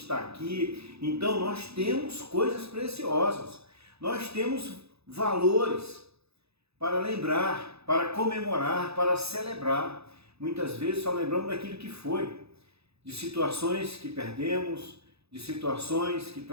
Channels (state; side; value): late; left; 0.79 ms